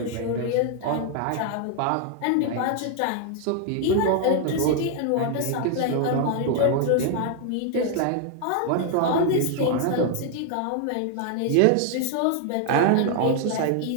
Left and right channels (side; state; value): both; different; correlation 0.00